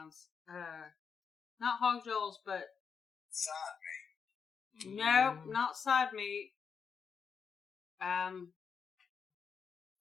Not hog jaws, but side meat. No, not side meat.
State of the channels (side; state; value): right; quieter; 6.3 dB